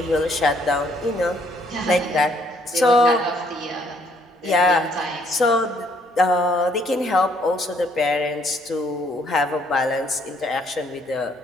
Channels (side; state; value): both; normal; correlation 0.66